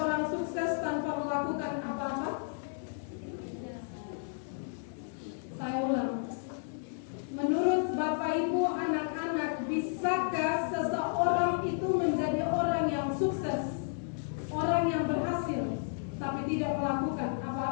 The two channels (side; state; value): right; silent; digital silence